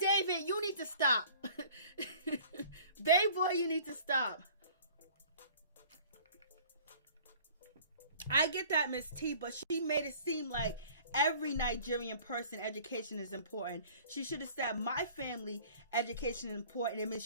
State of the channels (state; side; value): inverted; both; correlation -0.49